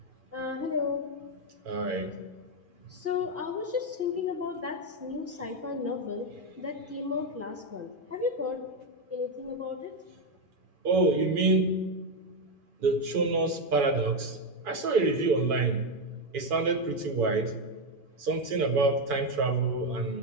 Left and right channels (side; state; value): left; late; 2.4 ms